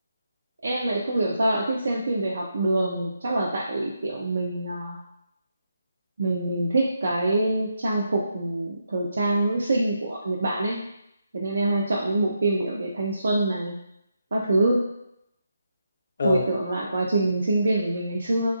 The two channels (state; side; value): inverted; both; correlation -0.82